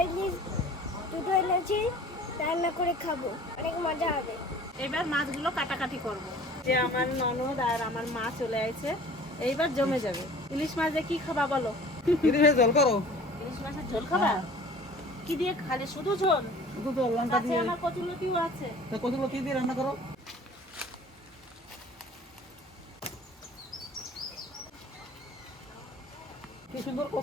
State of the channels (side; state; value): both; normal; correlation 0.47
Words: ইলিশ দুটো এনেছি, রান্না করে খাবো, অনেক মজা হবে। এবার মাছগুলো কাটাকাটি করব। যে আমার ননদ আর আমার মা চলে আসছে, এইবার জমে যাবে। ইলিশ মাছ দিয়ে কি খাবা বলো? ইলিশের ঝোল করো। ইলিশ মাছের ঝোল খাবা? কি দিয়ে খালি? শুধু ঝোল? শুধু তো লঙ্কা আছে, দিয়ে। আমার কচুলতিও আছে। তা কতগুলো কি দিয়ে রান্না করো? কি সুন্দর